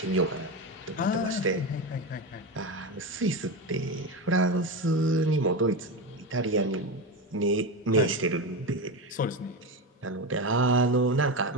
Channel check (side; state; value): both; normal; correlation 0.18